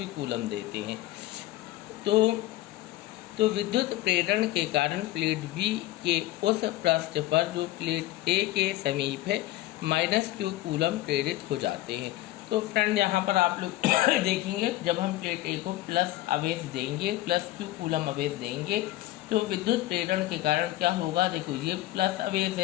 कूलम देते हैं, तो विद्युत प्रेरण के कारण प्लेट बी के उस पृष्ठ पर जो प्लेट ए के समीप है माइनस क्यू कूलम प्रेरित हो जाते हैं। तो फ्रेंड यहाँ पर आप लोग देखेंगे, जब हम प्लेट ए को प्लस आवेश देंगे, प्लस क्यू कूलम आवेश देंगे, तो विद्युत प्रेरण के कारण क्या होगा, देखो ये प्लस आवेश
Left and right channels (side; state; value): right; quieter; 16.1 dB